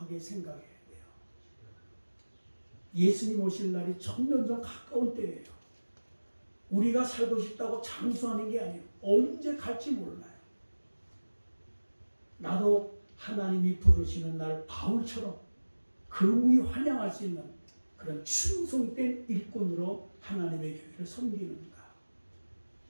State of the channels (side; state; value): both; inverted; correlation -1.00